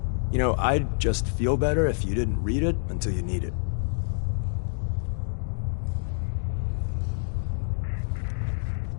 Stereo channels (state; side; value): silent; right; digital silence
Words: You know, I'd just feel better if you didn't read it until you need it.